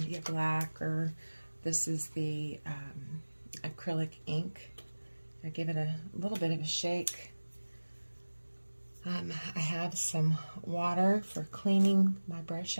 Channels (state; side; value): inverted; both; correlation -1.00